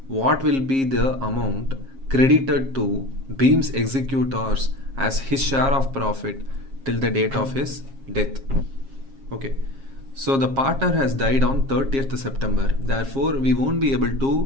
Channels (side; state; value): left; late; 7.4 ms